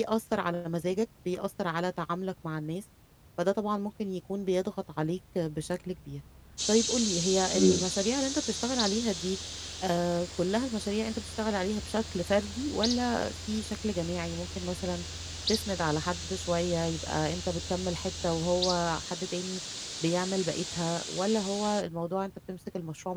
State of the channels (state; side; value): identical; both; correlation 1.00